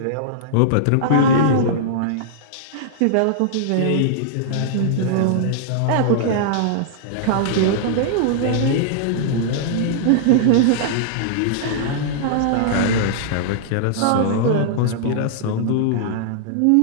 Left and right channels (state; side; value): different; both; correlation -0.02